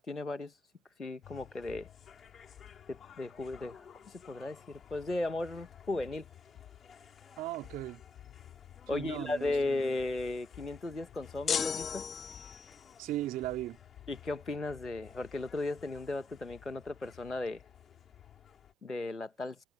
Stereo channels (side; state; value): both; normal; correlation 0.80